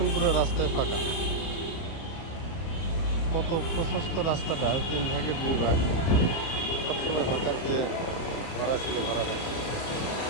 পুরো রাস্তায় ফাঁকা। কত প্রশস্ত রাস্তাটা 3 ভাগে 2 ভাগ, সবসময় হকার যে ভরা ছিল ভরা থাকছে।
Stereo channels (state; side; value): late; right; 30 ms